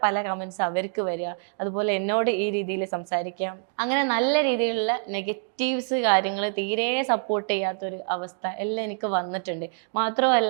പല കമൻസ് അവർക്ക് വരിക. അതുപോലെ എന്നോട് ഈ രീതിയിൽ സംസാരിക്കാം. അങ്ങനെ നല്ല രീതിയിലുള്ള നെഗറ്റീവ്സ് കാര്യങ്ങൾ തീരെ സപ്പോർട്ട് ചെയ്യാത്തൊരു അവസ്ഥ എല്ലാം എനിക്ക് വന്നിട്ടുണ്ട്.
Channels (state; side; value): silent; left; 61 dB below the other